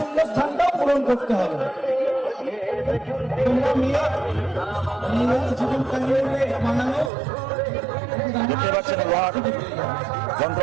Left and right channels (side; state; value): left; drops out; at 7.1 s